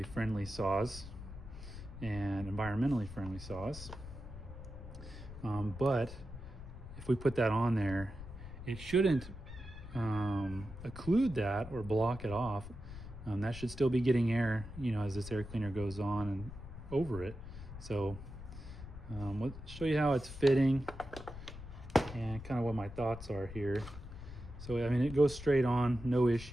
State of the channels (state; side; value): noise; left; rumble, 12 dB below the sound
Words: friendly saws and environmentally friendly saws. But if we put that on there, it shouldn't occlude that or block it off. That should still be getting air, as this air cleaner goes on and over it. So let's show you how it's fitting. and kind of what my thoughts are here. So I mean, it goes straight on, no